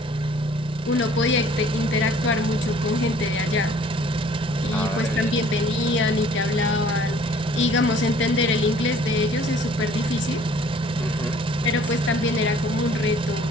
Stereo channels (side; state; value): both; normal; correlation 0.55